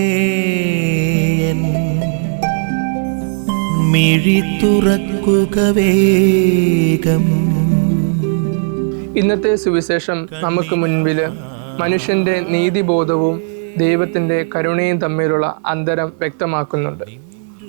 മിഴി തുറക്കുക വേഗം. ഇന്നത്തെ സുവിശേഷം നമുക്ക് മുൻപിൽ മനുഷ്യന്റെ നീതിബോധവും ദൈവത്തിന്റെ കരുണയും തമ്മിലുള്ള അന്തരം വ്യക്തമാക്കുന്നുണ്ട്.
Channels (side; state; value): left; silent; 67 dB below the other